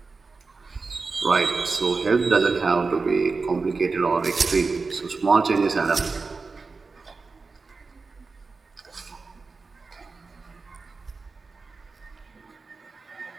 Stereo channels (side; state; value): left; quieter; 4.2 dB